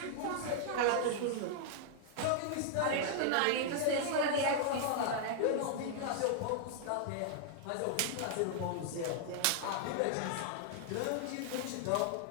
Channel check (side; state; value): both; different; correlation -0.01